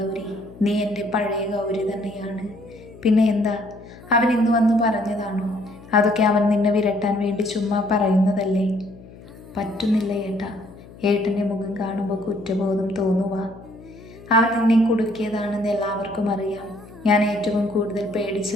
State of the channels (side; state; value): left; noise; hum, 20 dB below the sound